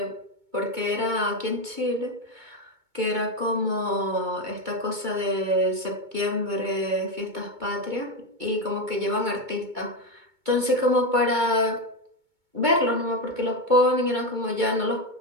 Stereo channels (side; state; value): left; late; 2.2 ms